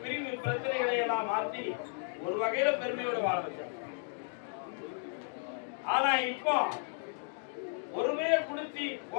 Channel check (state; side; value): silent; right; 55 dB below the other